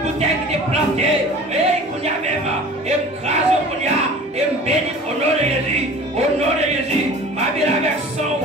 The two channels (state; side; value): normal; both; correlation 0.42